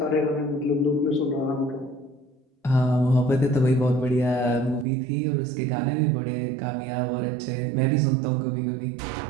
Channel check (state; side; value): drops out; left; at 4.9 s